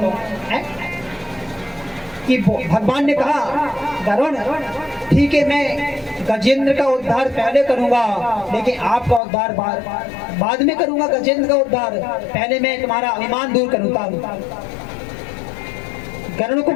है कि भगवान ने कहा गरुड़ ठीक है मैं गजेंद्र का उद्धार पहले करूंगा, लेकिन आपका उद्धार बाद में करूंगा। गजेंद्र का उद्धार पहले मैं तुम्हारा अभिमान दूर करूंगा। गरुड़ को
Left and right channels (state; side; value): drops out; right; at 9.2 s